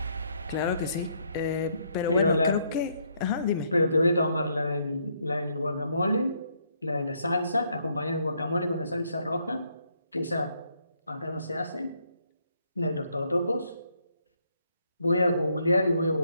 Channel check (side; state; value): both; inverted; correlation -0.72